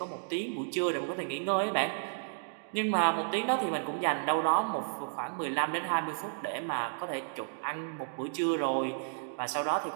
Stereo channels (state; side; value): silent; left; digital silence